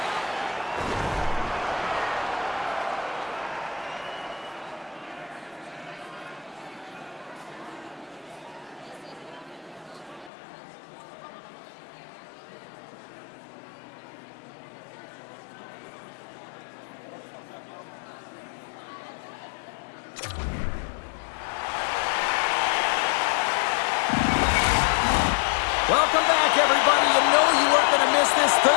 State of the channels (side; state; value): right; drops out; at 10.3 s